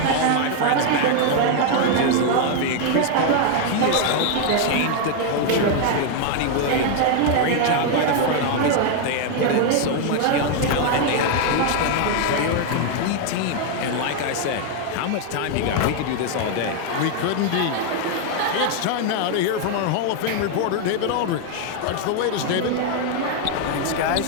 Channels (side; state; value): both; different; correlation 0.00